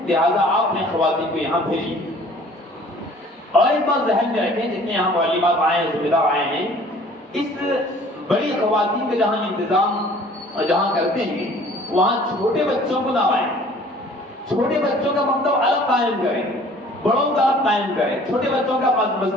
لہذا آپ نے خواتین کو یہاں بھیجی۔ اور ایک بات ذہن میں رکھیں، جتنے یہاں معلمات آئے ہیں، ذمہ دار آئے ہیں، اس بڑی خواتین کا جہاں انتظام جہاں کرتے ہیں وہاں چھوٹے بچوں کو نہ آئیں۔ چھوٹے بچوں کا مکتب الگ قائم کریں، بڑوں کا الگ قائم کریں۔ چھوٹے بچوں کا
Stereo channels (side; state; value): both; normal; correlation 0.51